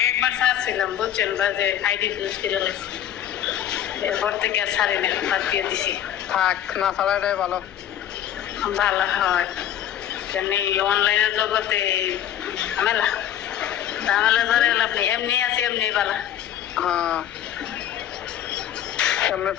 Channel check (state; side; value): quieter; right; 10.8 dB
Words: একবার ছাড়ছিলাম বুঝছেন বা যে আইডি ফিউজ করে নিয়েছি এরপর থেকে আর ছাড়ি না বাদ দিয়ে দিছি থাক না ছাড়াটাই ভালো ভালো হয় কেন এই অনলাইনের জগতে ঝামেলা ধরে আপনি এমনি আছে এমনি ভালো সামনে